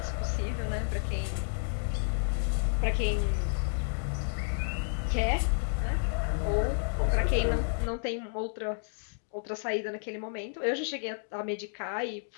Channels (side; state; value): right; silent; digital silence